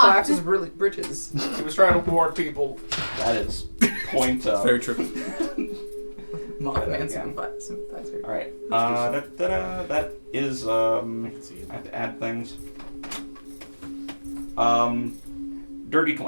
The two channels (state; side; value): inverted; both; correlation -1.00